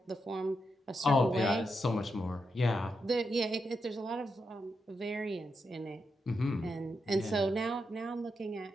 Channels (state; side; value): normal; both; correlation 0.84